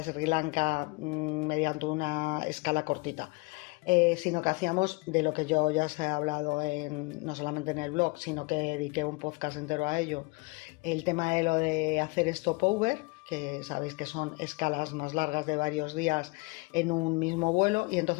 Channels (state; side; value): quieter; right; 27.4 dB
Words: Sri Lanka mediante una escala cortita. Sino que hacíamos de lo que yo ya os he hablado no solamente en el blog, sino que dediqué un podcast entero a ello, el tema de lo de hacer stopover, que sabéis que son escalas más largas de varios días en un mismo vuelo, y